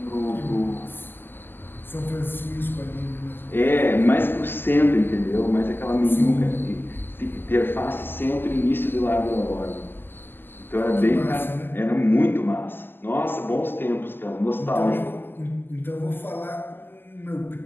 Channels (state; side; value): late; right; 0.096 ms